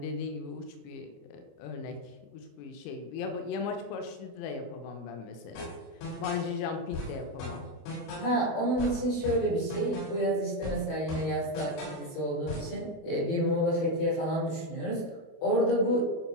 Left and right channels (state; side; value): late; right; 28 ms